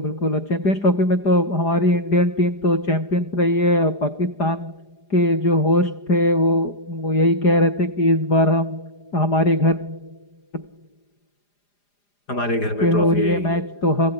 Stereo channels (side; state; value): right; late; 4.9 ms